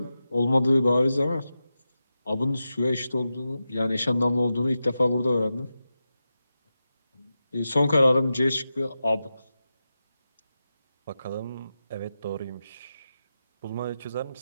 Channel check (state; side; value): inverted; both; correlation -0.91